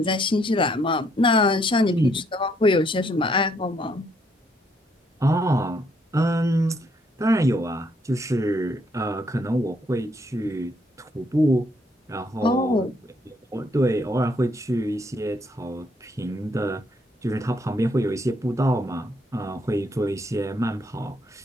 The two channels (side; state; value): both; normal; correlation 0.70